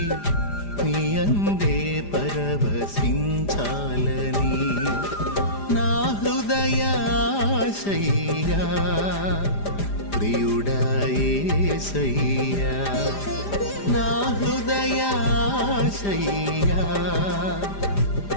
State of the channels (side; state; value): right; late; 5.0 ms